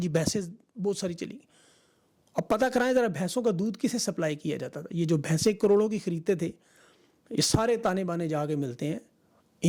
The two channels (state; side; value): identical; both; correlation 1.00